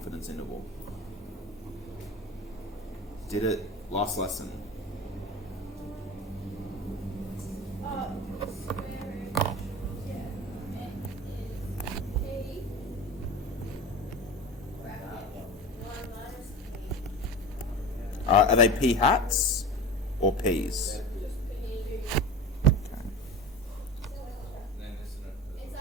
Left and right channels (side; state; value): both; normal; correlation 0.32